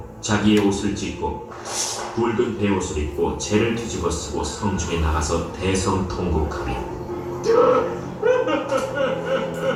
자기의 옷을 찢고 굵은 베옷을 입고 재를 뒤집어 쓰고 성중에 나가서 대성통곡하며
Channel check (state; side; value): identical; both; correlation 1.00